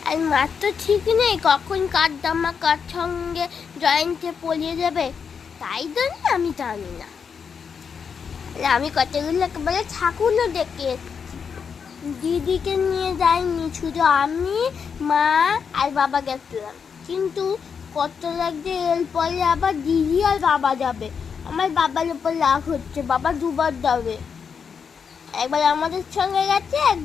আর মাত্র ঠিক নেই কখন কার জামা কার সঙ্গে জয়েন্টে পলিয়ে যাবে, তাই জন্য আমি জানি না। আমি কতগুলো একেবারে ঠাকুরও ডেকে দিদিকে নিয়ে যাইনি, শুধু আমি, মা আর বাবা গেছিলাম। কিন্তু কত লাগছে এরপরে আবার দিদি আর বাবা যাবে। আমার বাবার উপর রাগ হচ্ছে, বাবা দুবার যাবে, একবার আমাদের সঙ্গে গেছে,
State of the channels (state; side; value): quieter; right; 6.4 dB